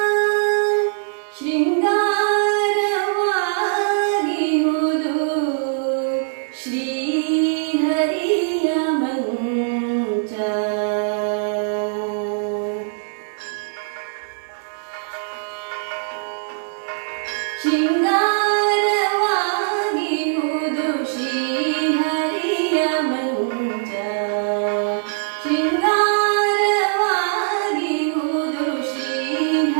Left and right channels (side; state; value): left; silent; digital silence